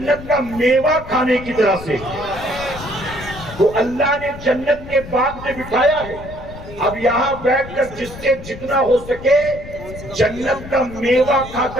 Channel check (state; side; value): noise; left; rumble, 14 dB below the sound